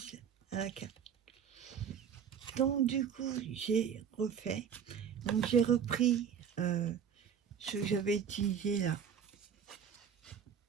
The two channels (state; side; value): quieter; left; 7.7 dB